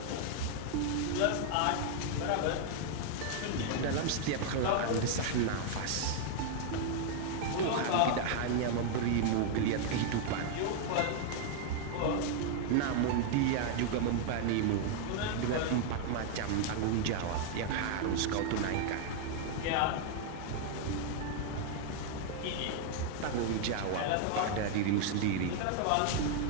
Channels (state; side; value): different; both; correlation 0.00